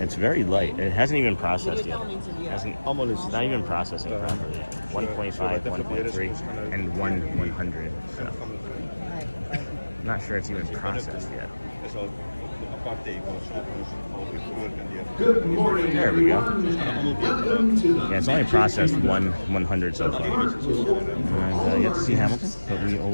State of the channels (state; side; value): inverted; both; correlation -1.00